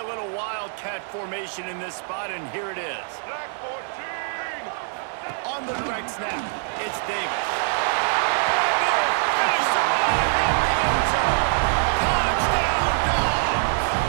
little Wildcat formation in this spot, and here it is. On the direct snap, it's Davis. Touchdown, Dogs!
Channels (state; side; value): silent; left; 58 dB below the other